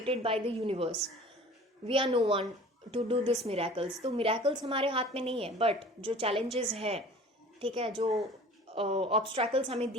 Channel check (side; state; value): both; normal; correlation 0.44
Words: by the universe. We are no one to do this miracles. तो मिराकल्स हमारे हाथ में नहीं है, बट जो चैलेंजेस हैं, ठीक है, जो ऑब्स्ट्रैकल्स हमें